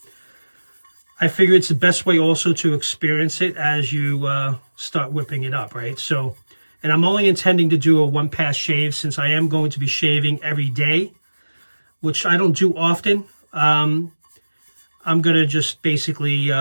I figure it's the best way also to experience it as you start whipping it up, right? So, and I'm only intending to do a one-pass shave since I am going to be shaving every day, which I don't do often. I'm going to just basically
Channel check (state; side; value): inverted; both; correlation -1.00